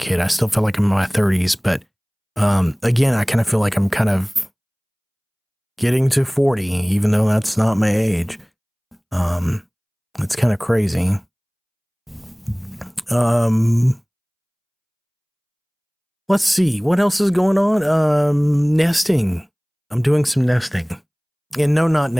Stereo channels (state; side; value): identical; both; correlation 1.00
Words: I still feel like I'm in my 30s, but again, I kind of feel like I'm kind of getting to 40, even though that's not my age. It's kind of crazy. let's see what else is going on. Nesting. I'm doing some nesting. And no, not